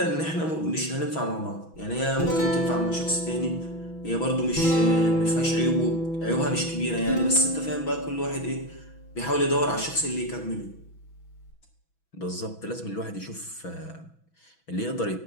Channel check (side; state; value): right; late; 6.1 ms